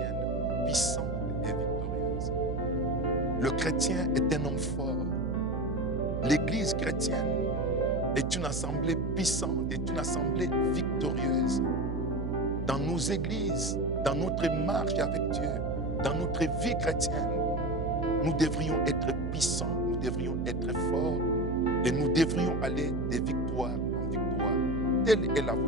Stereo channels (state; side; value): noise; right; hum, 3 dB below the sound